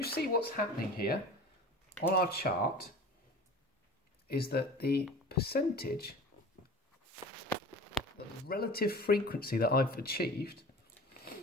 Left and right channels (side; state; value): both; normal; correlation 0.39